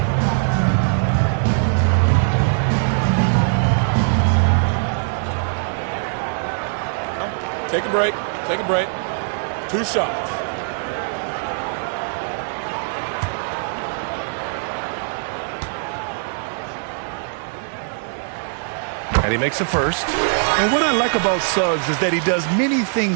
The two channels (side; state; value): left; silent; digital silence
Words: Take a break. Take a break. 2 shots. And he makes the first. And what I like about Suggs is that he does many